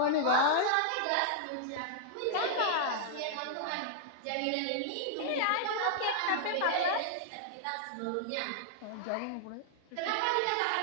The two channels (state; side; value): different; both; correlation -0.01